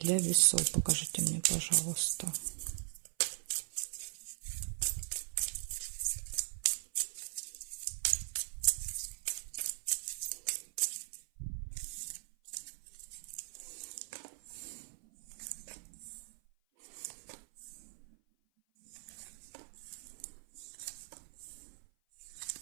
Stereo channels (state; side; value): silent; left; 51 dB below the other